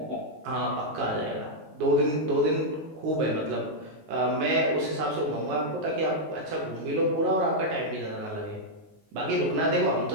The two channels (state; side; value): late; left; 19 ms